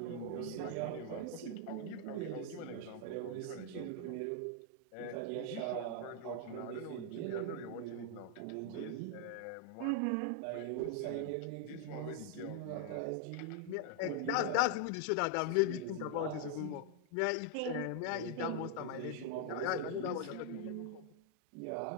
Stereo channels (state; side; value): different; both; correlation 0.00